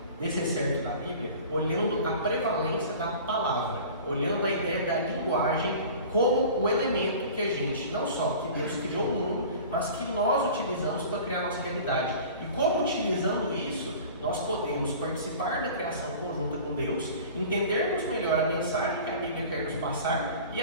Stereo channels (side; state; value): both; inverted; correlation -0.41